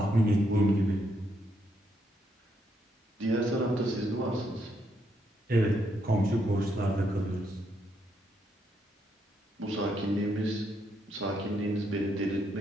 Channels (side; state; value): both; normal; correlation 0.76